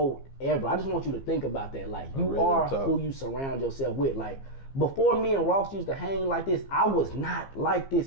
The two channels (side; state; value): right; late; 15 ms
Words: ever. I just want you to think about that. Like, you are who you surround yourself with. Like, before me and Ross used to hang like this, I was not like